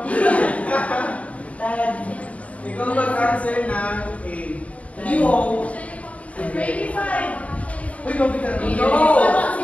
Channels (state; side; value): late; right; 0.067 ms